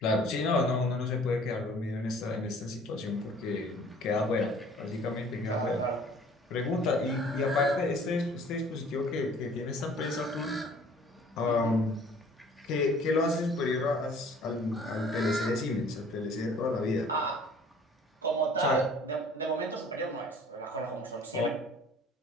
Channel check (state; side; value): normal; both; correlation 0.52